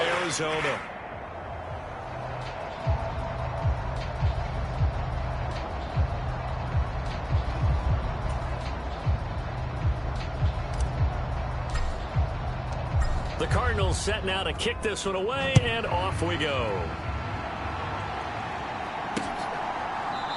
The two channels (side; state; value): both; identical; correlation 1.00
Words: Arizona. The Cardinals set now to kick this one away, and off we go.